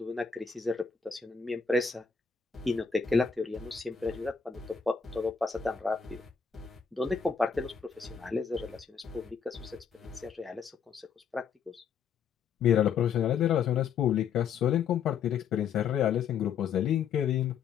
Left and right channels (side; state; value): right; quieter; 6.6 dB